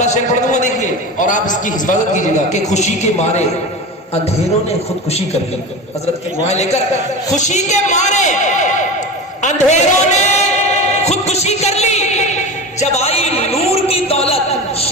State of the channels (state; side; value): normal; both; correlation 0.28